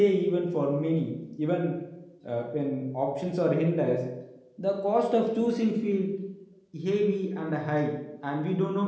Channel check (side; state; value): both; identical; correlation 1.00